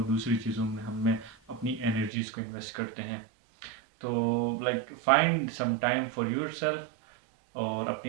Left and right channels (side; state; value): left; drops out; at 2.1 s